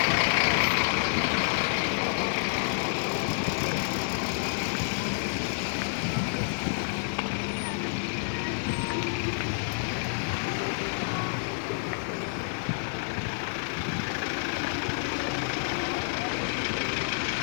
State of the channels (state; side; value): silent; right; digital silence